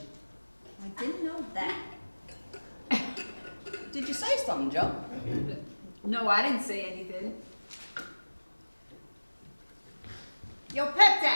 I didn't know that. Did you say something, Joe? No, I didn't say anything. Yo, Pep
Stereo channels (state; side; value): inverted; both; correlation -1.00